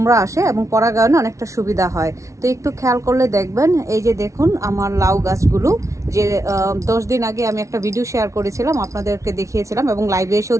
আসে এবং পরাগায়নে অনেকটা সুবিধা হয়। তো একটু খেয়াল করলে দেখবেন, এই যে দেখুন আমার লাউ গাছগুলো, যে 10 দিন আগে আমি একটা ভিডিও শেয়ার করেছিলাম, আপনাদেরকে দেখিয়েছিলাম এবং লাইভে এসেও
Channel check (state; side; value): late; left; 0.14 ms